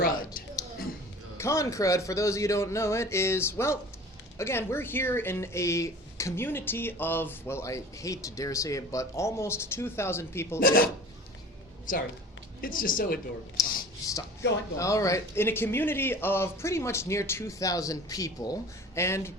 Con crud, for those of you who don't know it, is, well, again, we're here in a community of, well, I hate to dare say it, but almost 2,000 people. Sorry. It's just so adorable. Stop. Go on. All right. In a community of pretty much near 2,000 people, and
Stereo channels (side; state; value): both; normal; correlation 0.42